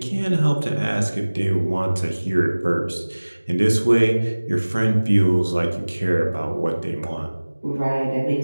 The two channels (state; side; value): inverted; both; correlation -1.00